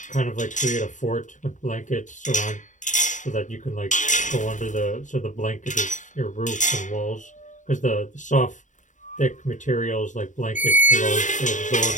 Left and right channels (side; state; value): right; late; 0.36 ms